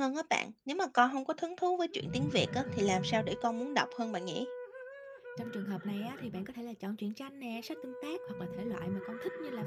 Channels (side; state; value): both; identical; correlation 1.00